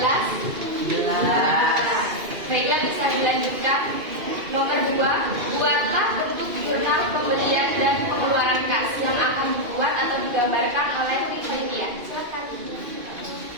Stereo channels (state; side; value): late; left; 2.5 ms